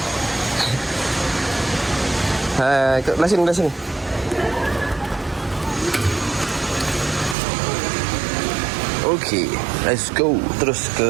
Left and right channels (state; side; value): drops out; left; at 7.4 s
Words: Belah sini. Okay, let's go. Terus